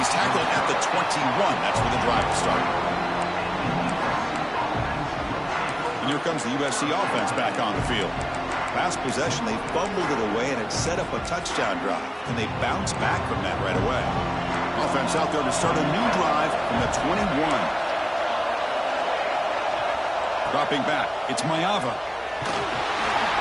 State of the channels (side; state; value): both; identical; correlation 1.00